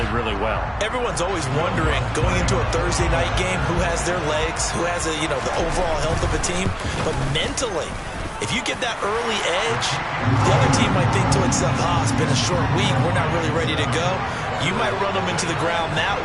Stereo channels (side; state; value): both; identical; correlation 1.00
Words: really well. Everyone's always wondering, going into a Thursday night game, who has their legs, who has the overall health of a team. But mentally, if you get that early edge, the other team might think to itself, it's been a short week, we're not really ready to go. You might run them into the ground that